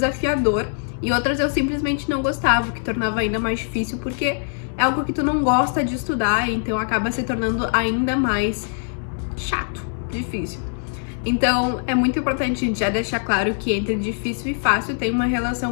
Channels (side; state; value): right; silent; digital silence